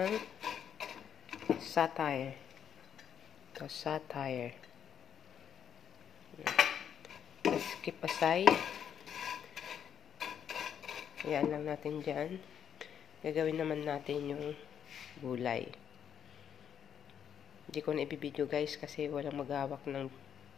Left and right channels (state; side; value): quieter; right; 8.6 dB